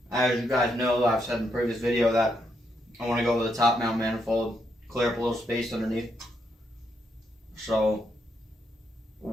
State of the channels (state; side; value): normal; both; correlation 0.79